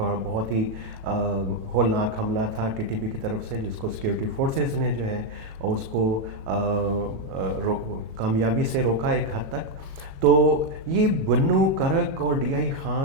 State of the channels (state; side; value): late; left; 36 ms